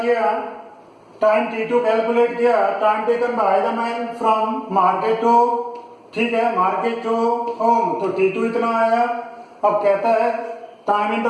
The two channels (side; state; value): both; identical; correlation 1.00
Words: टाइम T2 कैलकुलेट किया, time taken by the man from market to, ठीक है, मार्केट टू होम, तो T2 इतना आया। अब कहता है टाइम